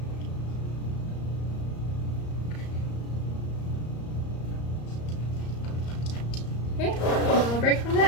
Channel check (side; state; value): right; late; 34 ms